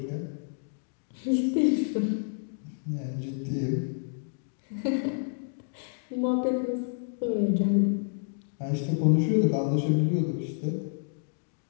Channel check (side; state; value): right; silent; digital silence